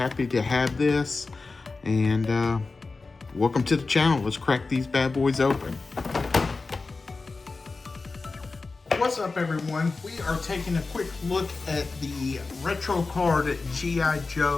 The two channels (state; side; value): quieter; right; 3.9 dB